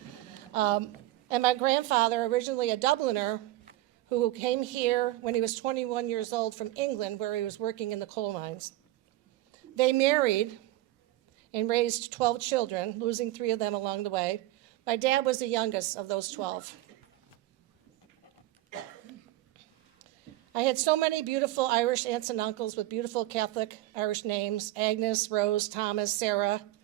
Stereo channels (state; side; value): quieter; left; 16.3 dB